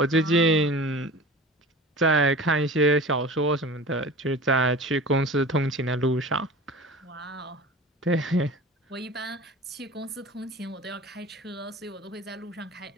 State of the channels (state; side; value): normal; both; correlation 0.37